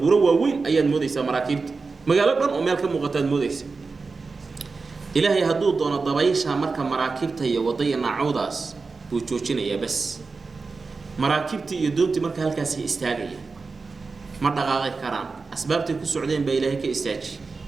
ووين أيان موديسا مراكب مقالبنا ومالك مغتاد موديسا إلهي هدو دون الضبايشها مركا مراكبتي وضينا عوداس بوجوجين يا بس مراكبتي يدونتي مركا هالكاسي استاغية ما دقاقي كران أسبابتي كو سعودين بإلهي كإستاجي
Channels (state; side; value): quieter; left; 4.3 dB